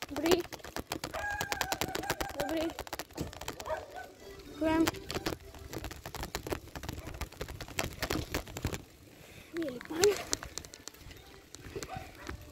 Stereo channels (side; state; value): both; identical; correlation 1.00